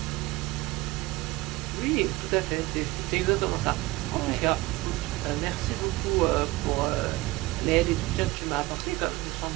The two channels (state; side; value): quieter; left; 20.2 dB